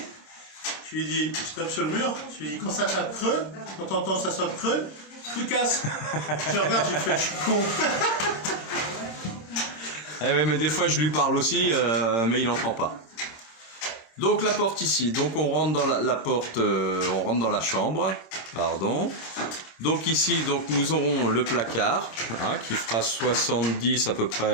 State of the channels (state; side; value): late; right; 26 ms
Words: Je lui dis, je tape sur le mur, je lui dis, quand ça tape creux, quand t'entends ça sonne creux, tu casses. Je regarde, je fais, je suis con. Eh ouais, mais des fois, je lui parle aussi, mais il n'entend pas. Donc, la porte ici. Donc, on rentre dans la porte, on rentre dans la chambre. Pardon. Donc ici, donc nous aurons le placard, hein, qui fera 70 à peu